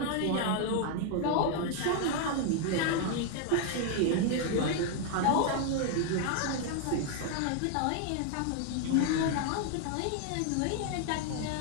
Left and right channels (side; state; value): both; different; correlation 0.00